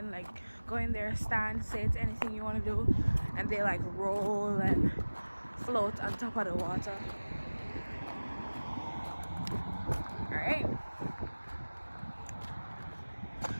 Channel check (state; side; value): inverted; both; correlation -1.00